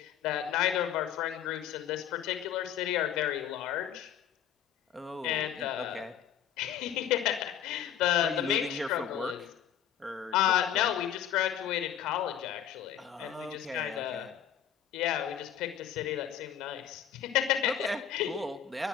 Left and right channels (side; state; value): right; quieter; 9.8 dB